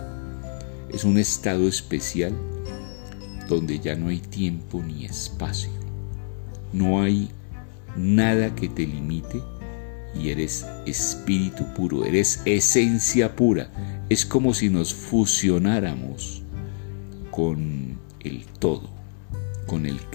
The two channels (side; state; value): right; silent; 62 dB below the other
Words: Es un estado especial donde ya no hay tiempo ni espacio, no hay nada que te limite y eres espíritu puro, eres esencia pura. Es como si nos fusionáramos con el todo, con el